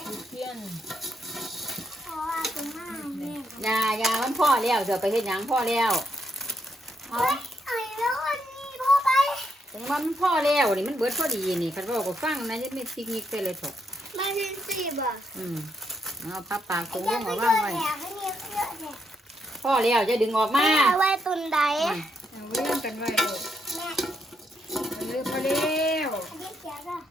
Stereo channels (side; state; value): both; normal; correlation 0.77